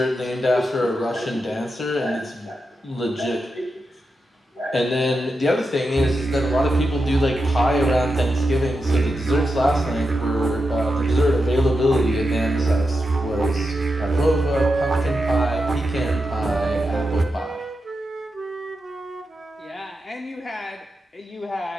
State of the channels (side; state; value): both; normal; correlation 0.88